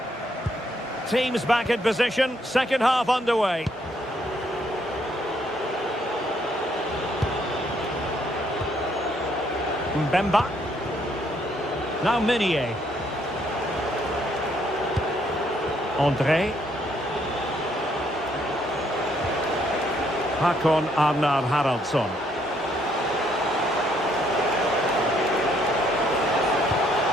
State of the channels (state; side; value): normal; both; correlation 0.70